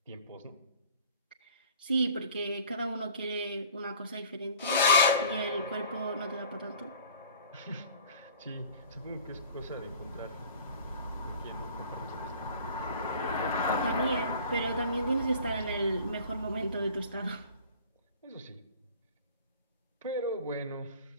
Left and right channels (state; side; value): inverted; both; correlation -0.47